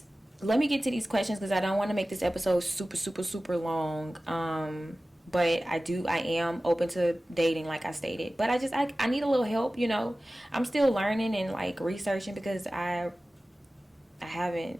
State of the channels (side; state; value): both; normal; correlation 0.96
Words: let me get to these questions, because I don't want to make this episode super long. But I am open to dating, like I stated. But I need a little help, you know. I'm still learning and like researching, because I haven't